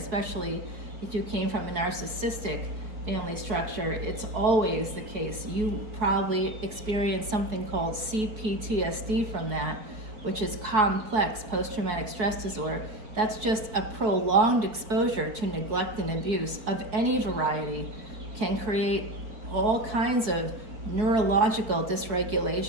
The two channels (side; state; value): left; late; 4.7 ms